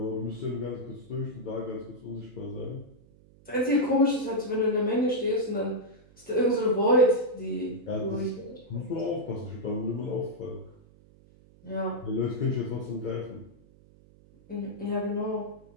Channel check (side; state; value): right; noise; hum, 26 dB below the sound